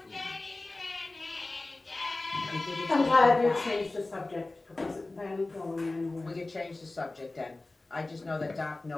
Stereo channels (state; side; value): quieter; right; 3.1 dB